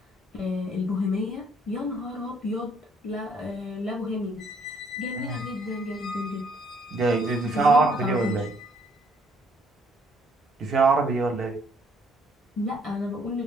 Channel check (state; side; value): normal; both; correlation 0.65